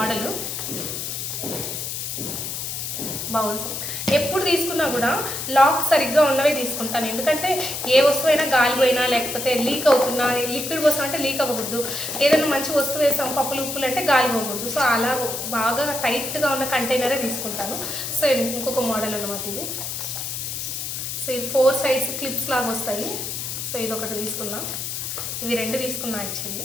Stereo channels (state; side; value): noise; left; hiss, 5 dB below the sound